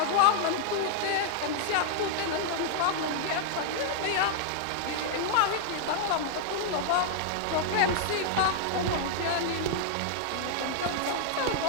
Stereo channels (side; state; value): both; different; correlation -0.01